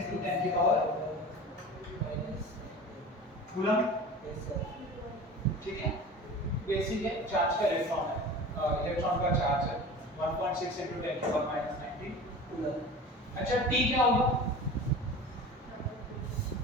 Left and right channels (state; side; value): normal; both; correlation 0.36